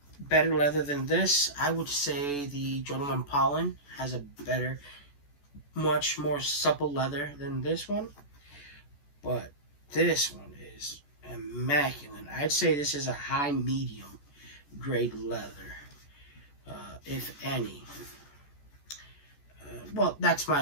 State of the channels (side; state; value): right; late; 14 ms